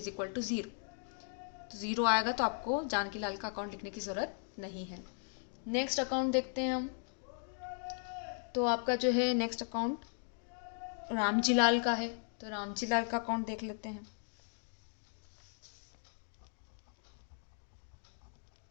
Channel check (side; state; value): right; silent; 53 dB below the other